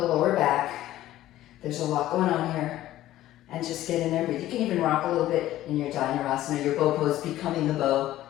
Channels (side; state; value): right; quieter; 14.3 dB